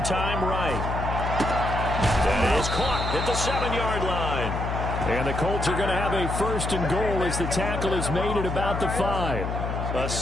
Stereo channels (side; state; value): left; noise; hum, 3 dB below the sound